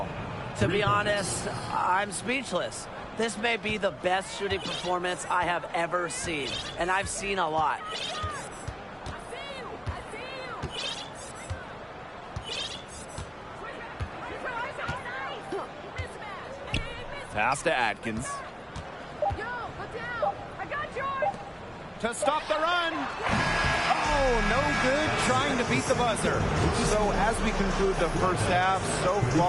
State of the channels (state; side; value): identical; both; correlation 1.00